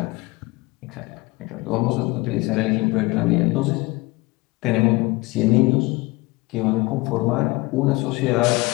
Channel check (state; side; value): quieter; right; 22.7 dB